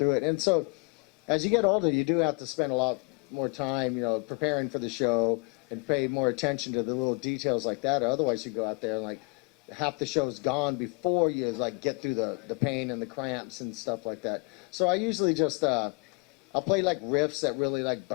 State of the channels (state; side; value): quieter; right; 31.8 dB